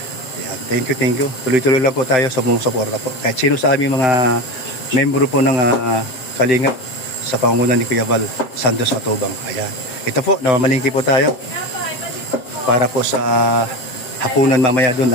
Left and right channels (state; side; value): late; right; 7.7 ms